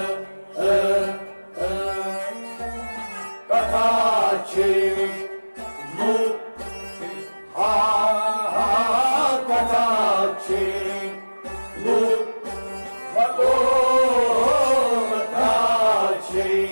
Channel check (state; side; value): inverted; both; correlation -1.00